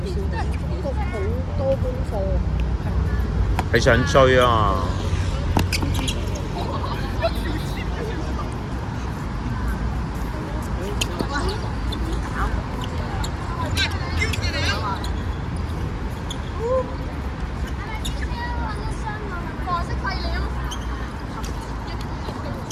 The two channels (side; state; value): both; identical; correlation 1.00